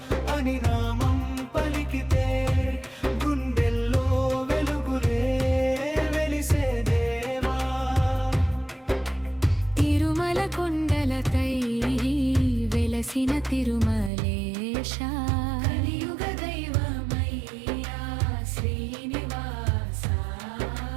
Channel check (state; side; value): drops out; left; at 14.1 s